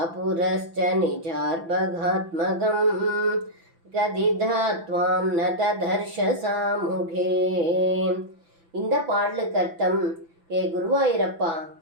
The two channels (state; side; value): late; left; 5.9 ms